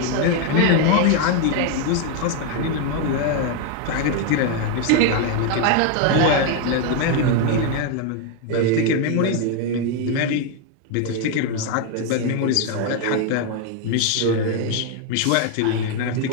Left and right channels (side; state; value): both; different; correlation 0.01